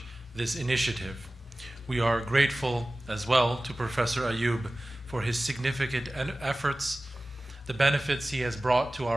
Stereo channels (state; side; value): normal; both; correlation 0.97